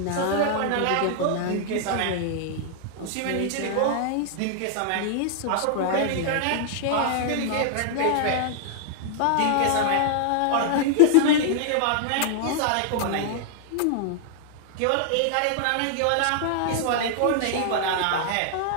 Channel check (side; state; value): both; different; correlation 0.00